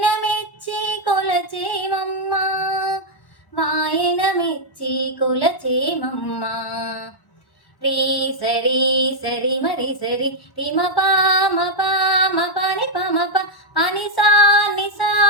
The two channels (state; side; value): late; right; 1.0 ms